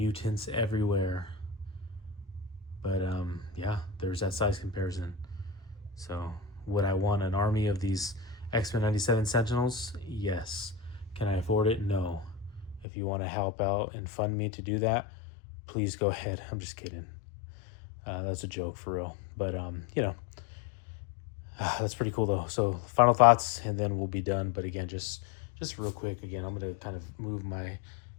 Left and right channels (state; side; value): drops out; right; at 12.9 s